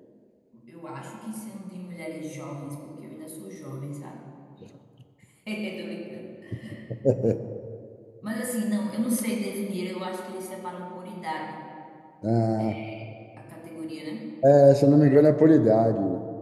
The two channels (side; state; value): both; identical; correlation 1.00